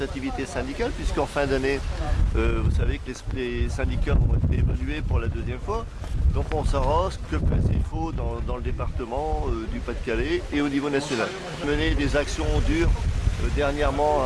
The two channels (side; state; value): both; identical; correlation 1.00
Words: syndicale, puisqu'en fin d'année, vous savez que les syndicats vont être évalués pour la deuxième fois. Donc on saura ce que il faut dans le département du Pas-de-Calais et au niveau national. Mener des actions dures dernièrement